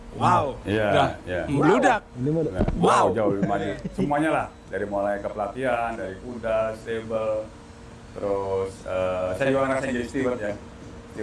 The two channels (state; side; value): identical; both; correlation 1.00